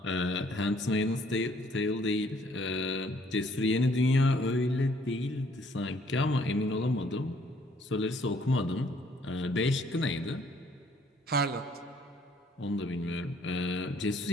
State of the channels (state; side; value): normal; both; correlation 0.63